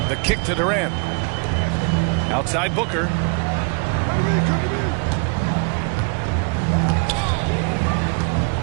The kick to Durant. Outside Booker.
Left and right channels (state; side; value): quieter; left; 35.7 dB